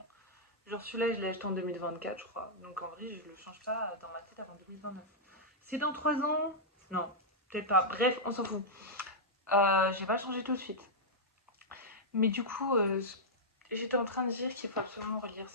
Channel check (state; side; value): normal; both; correlation -0.09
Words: Genre, celui-là, je l'ai acheté en 2024, je crois. Donc, en vrai, je le change pas dans ma tête avant 2029. C'est dans 3 ans? Non, peut-être pas. Bref, on s'en fout. Je vais pas le changer tout de suite. Mais du coup, j'étais en train de dire qu'il faut absolument relire